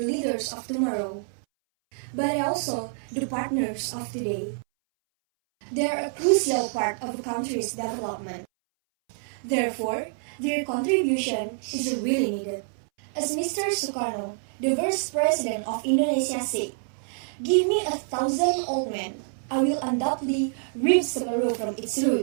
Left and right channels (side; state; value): left; silent; 60 dB below the other